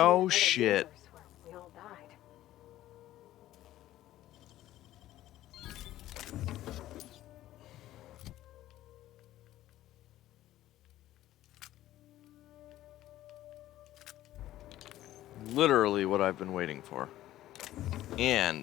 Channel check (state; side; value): quieter; right; 14.2 dB